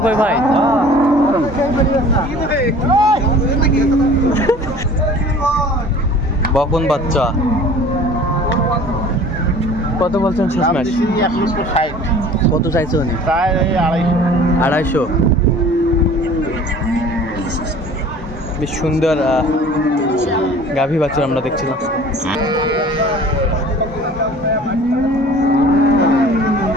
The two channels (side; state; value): both; normal; correlation 0.46